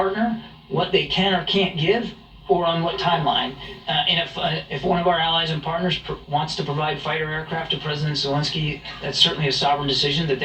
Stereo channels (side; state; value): both; identical; correlation 1.00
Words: what they can or can't give, or on what timeline. And if one of our allies and partners wants to provide fighter aircraft to President Zelensky, that's certainly a sovereign decision that